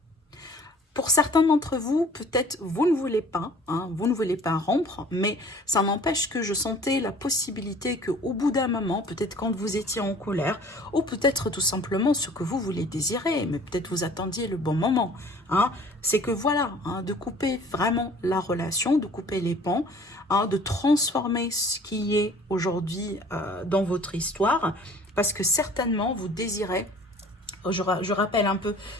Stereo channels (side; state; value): both; normal; correlation 0.50